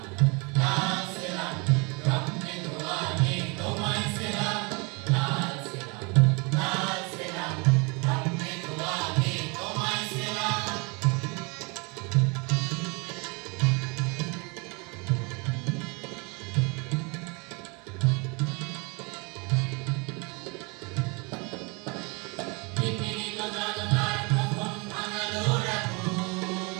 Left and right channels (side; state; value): left; quieter; 30.6 dB